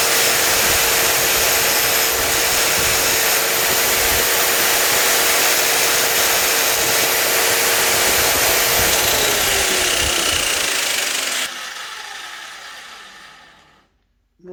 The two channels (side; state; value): both; identical; correlation 1.00